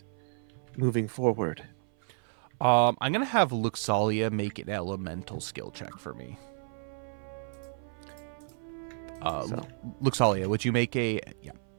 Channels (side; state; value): left; silent; 57 dB below the other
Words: moving forward. I'm going to have Luxalia make an elemental skill check for me. Luxalia, would you make a... Yeah,